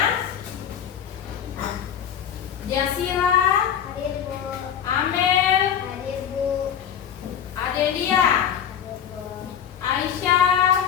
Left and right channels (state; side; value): quieter; right; 8.8 dB